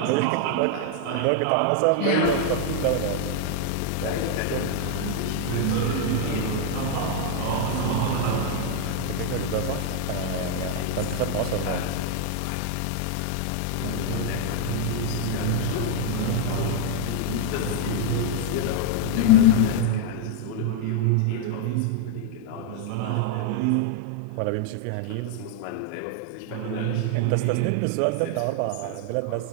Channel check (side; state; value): both; different; correlation 0.00